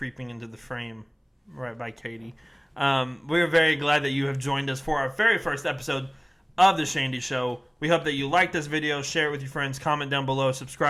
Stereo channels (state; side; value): identical; both; correlation 1.00